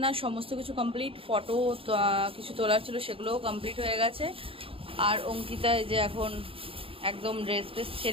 সমস্ত কিছু কমপ্লিট। ফটো কিছু তোলার ছিল, সেগুলোও কমপ্লিট হয়ে গেছে। আর অঙ্কিতা এই যে এখন একদম ড্রেস ফ্রেস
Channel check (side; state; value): left; late; 0.27 ms